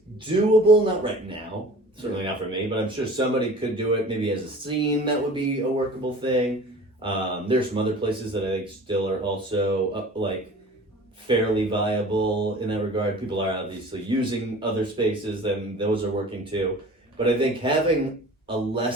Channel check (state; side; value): normal; both; correlation 0.43